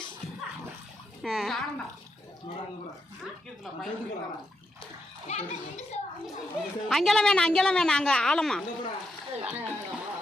அங்கெல்லாம் வேணாம் அங்கே ஆழமா.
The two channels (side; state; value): both; normal; correlation 0.81